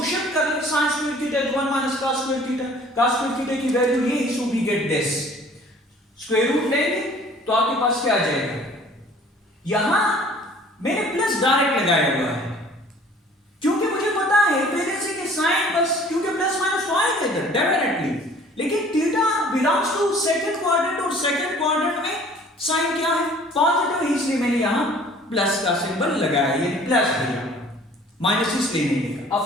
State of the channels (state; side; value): normal; both; correlation 0.52